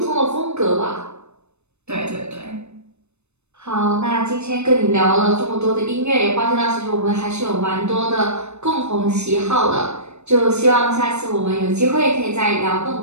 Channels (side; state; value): left; late; 0.81 ms